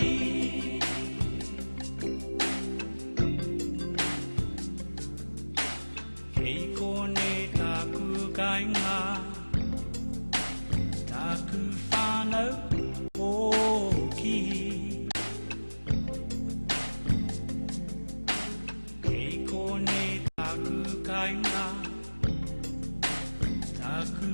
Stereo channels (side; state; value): both; inverted; correlation -1.00